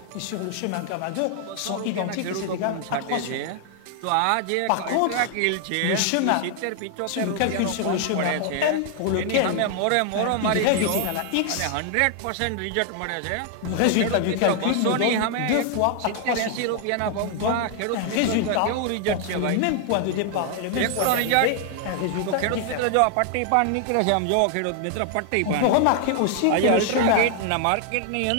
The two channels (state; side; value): different; both; correlation 0.00